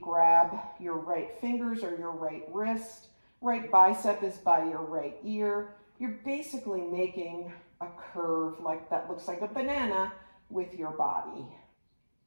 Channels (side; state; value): both; inverted; correlation -1.00